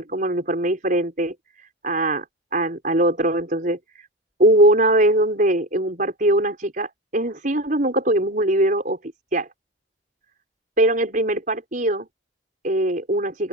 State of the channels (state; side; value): normal; both; correlation 0.21